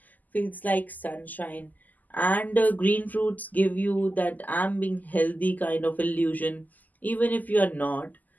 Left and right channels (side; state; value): right; late; 0.082 ms